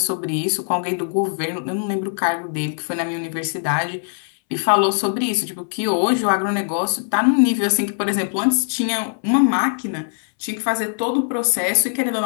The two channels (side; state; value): right; silent; 65 dB below the other